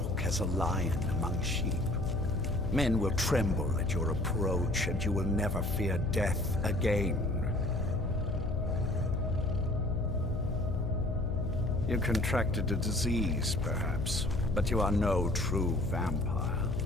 as a lion among sheep. Men will tremble at your approach and you will never fear death again. You contracted a disease, perhaps, but you are no true vampire.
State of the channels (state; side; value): noise; left; hum, 3 dB below the sound